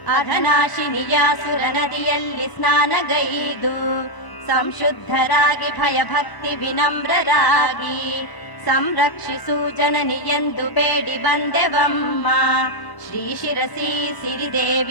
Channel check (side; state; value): right; late; 1.0 ms